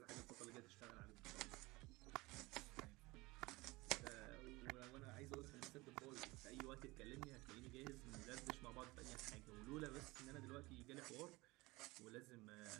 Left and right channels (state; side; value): quieter; left; 22.1 dB